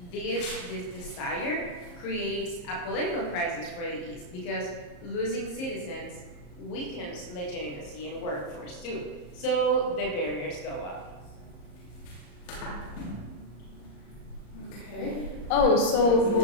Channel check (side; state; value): right; late; 34 ms